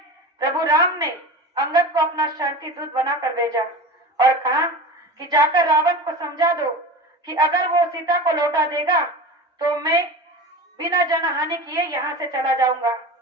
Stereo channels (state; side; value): normal; both; correlation 0.31